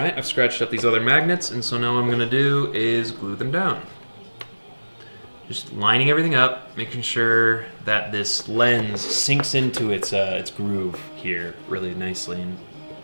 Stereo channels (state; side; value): inverted; both; correlation -1.00